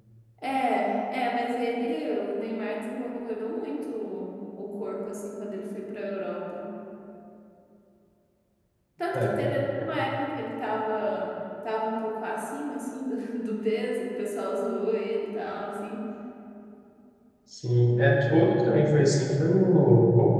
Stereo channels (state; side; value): identical; both; correlation 1.00